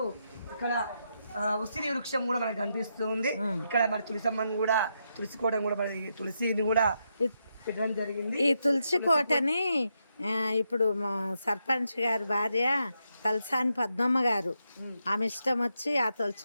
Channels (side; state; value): both; inverted; correlation -0.82